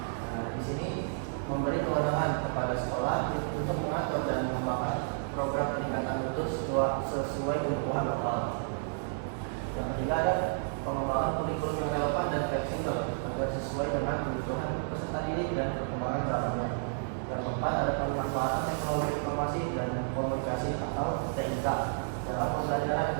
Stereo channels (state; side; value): silent; left; digital silence